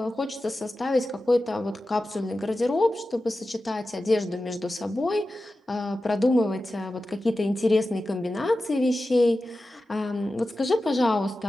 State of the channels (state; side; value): normal; both; correlation 0.94